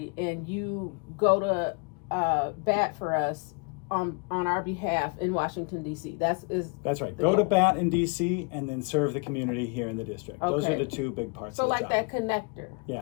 and you go to bat for us on our behalf in Washington, D.C. That's right. Go to bat in D.C. and then serve the community here in the district. Okay. Those are the two big parts So of the like job. that connector.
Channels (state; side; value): quieter; right; 33.1 dB